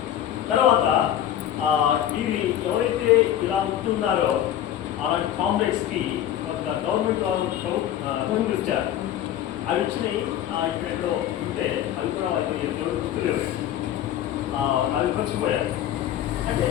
తర్వాత వీరి ఎవరైతే ఇలా ఉంటున్నారో అలాంటి కామ్రేడ్స్కి ఒక గవర్నమెంట్ వాళ్ళు భూములు ఇచ్చారు. అవి ఇచ్చినాయి ఇక్కడెక్కడో ఉంటే అవి కూడా వాళ్ళకి ఎవరు గుర్తులేవు. అవి పంచిపోయారు. అంటే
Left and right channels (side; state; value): right; quieter; 11.3 dB